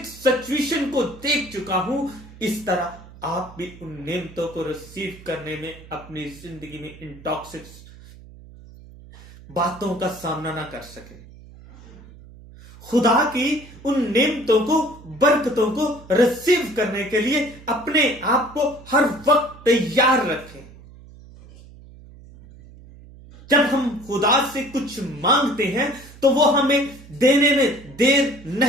सिचुएशन को देख चुका हूं, इस तरह आप भी उन नेमतों को रिसीव करने में, अपनी जिंदगी में इन टॉक्सिक बातों का सामना ना कर सके। खुदा की उन नेमतों को, बरकतों को रिसीव करने के लिए अपने आप को हर वक्त तैयार रखें। जब हम खुदा से कुछ मांगते हैं तो वो हमें देने में देर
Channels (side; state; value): right; noise; hum, 20 dB below the sound